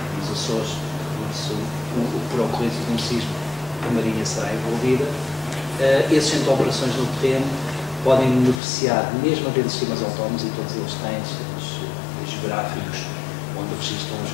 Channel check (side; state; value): right; drops out; at 8.6 s